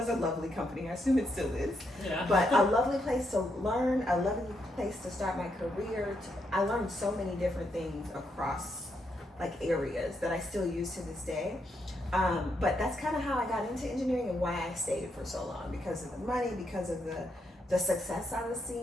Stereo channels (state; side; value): normal; both; correlation 0.79